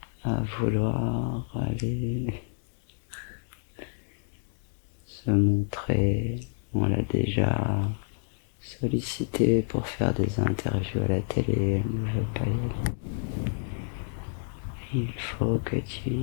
à vouloir aller se montrer. On l'a déjà sollicité pour faire des interviews à la télé. Elle ne veut pas y aller. Il faut que tu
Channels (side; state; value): right; silent; digital silence